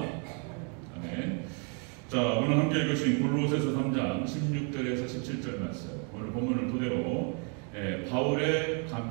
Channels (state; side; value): quieter; left; 37.9 dB